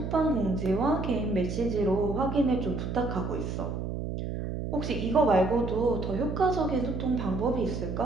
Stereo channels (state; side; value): noise; right; hum, 4 dB below the sound